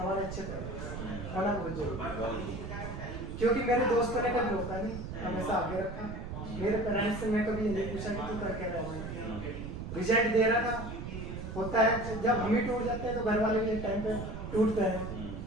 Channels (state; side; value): noise; right; rumble, 7 dB below the sound